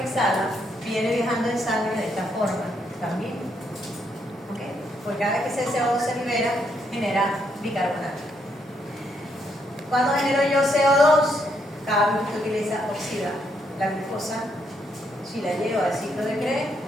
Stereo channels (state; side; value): normal; both; correlation 0.75